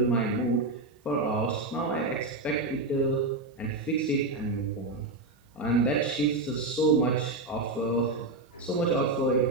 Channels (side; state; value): left; quieter; 3.1 dB